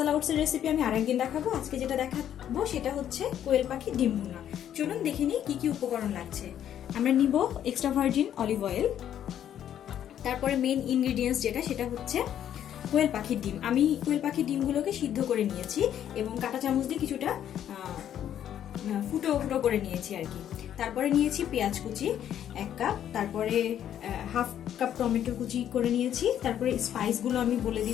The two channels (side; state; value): right; quieter; 10.3 dB